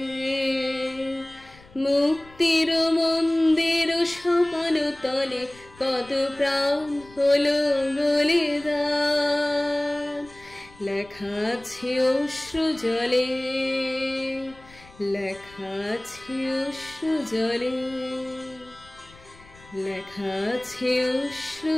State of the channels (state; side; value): noise; left; rumble, 24 dB below the sound